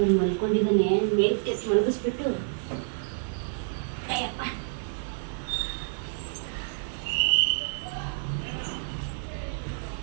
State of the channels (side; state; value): left; silent; digital silence